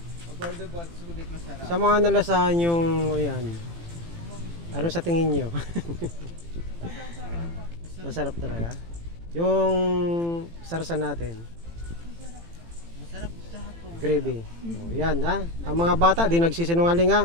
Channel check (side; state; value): left; late; 18 ms